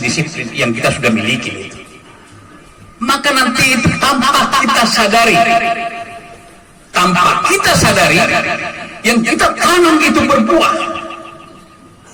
yang kita sudah miliki itu. Maka nanti itu tanpa kita sadari, yang kita tanam itu berbuah.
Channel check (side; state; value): both; identical; correlation 1.00